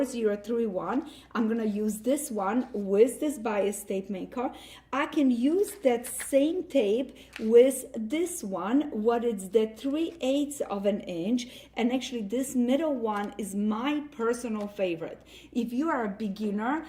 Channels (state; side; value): identical; both; correlation 1.00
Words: I'm gonna use this one with this bias tape maker. I can use that same tape with this one, what is the 3/8 of an inch, and actually this middle one is my personal favorite. If you are a beginner